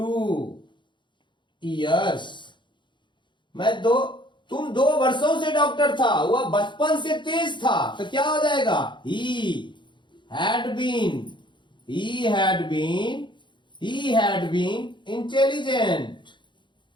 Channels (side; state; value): right; late; 0.23 ms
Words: years। तुम 2 वर्षों से डॉक्टर था, वह बचपन से तेज था, तो क्या हो जाएगा, he had been intelligent